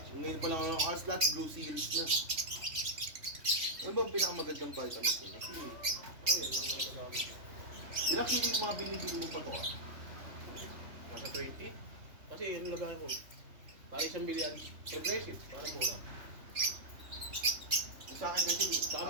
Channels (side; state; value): left; late; 3.2 ms